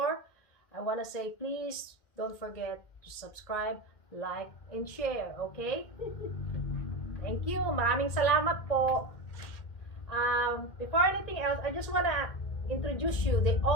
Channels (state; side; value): late; right; 2.1 ms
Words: I want to say please don't forget to subscribe, like, and share, okay? Thank you. Maraming salamat po. Before anything else, I just want to introduce you the